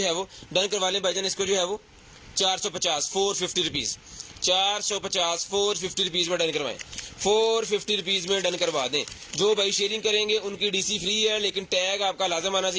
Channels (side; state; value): both; identical; correlation 1.00